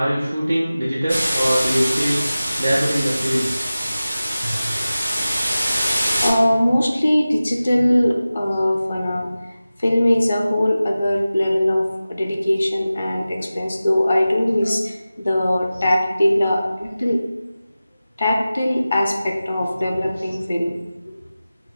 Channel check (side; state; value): both; inverted; correlation -0.96